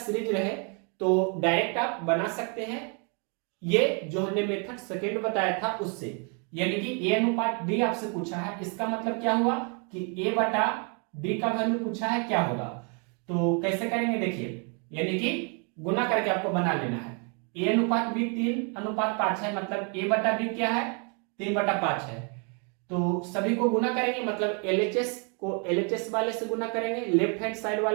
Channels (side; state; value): left; quieter; 36.9 dB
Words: रहे तो डायरेक्ट आप बना सकते हैं, ये जो हमने मेथड सेकेंड बताया था उससे, यानी कि a अनुपात d आपसे पूछा है, इसका मतलब क्या हुआ कि a बटा d का वैल्यू पूछा है क्या होगा। तो कैसे करेंगे देखिए, यानी कि गुना करके आपको बना लेना है। a अनुपात b 3:5 है, मतलब a बटा b क्या है 3/5 है। तो सभी को गुना करेंगे, मतलब LHS को LHS वाले से गुना करेंगे, लेफ्ट हैंड साइड